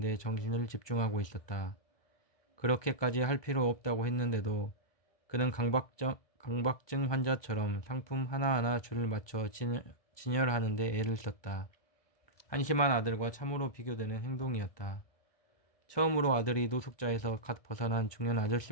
정신을 집중하고 있었다. 그렇게까지 할 필요 없다고 했는데도 그는 강박증 환자처럼 상품 하나하나 줄을 맞춰 진열하는 데 애를 썼다. 한심한 아들과 참으로 비교되는 행동이었다. 처음으로 아들이 노숙자에서 갓 벗어난 중년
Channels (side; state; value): right; late; 1.2 ms